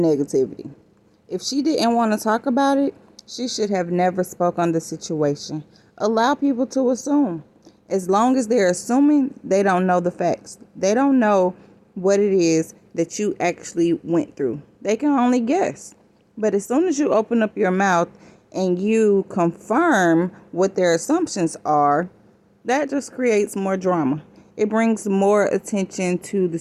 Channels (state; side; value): identical; both; correlation 1.00